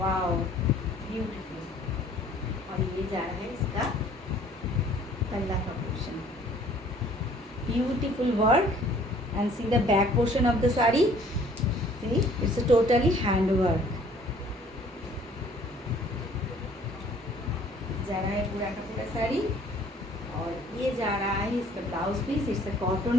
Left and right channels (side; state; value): both; normal; correlation 0.56